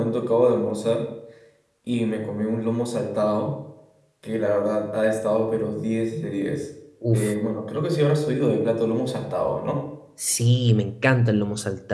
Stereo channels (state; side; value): identical; both; correlation 1.00